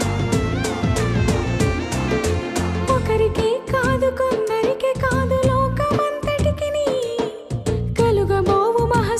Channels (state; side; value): identical; both; correlation 1.00